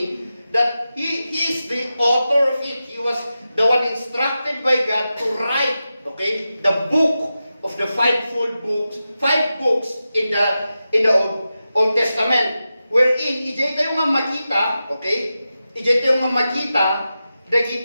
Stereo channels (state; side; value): inverted; both; correlation -0.92